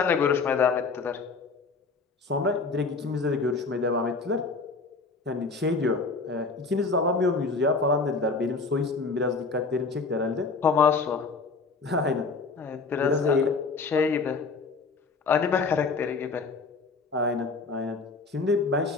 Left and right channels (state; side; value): quieter; right; 4.3 dB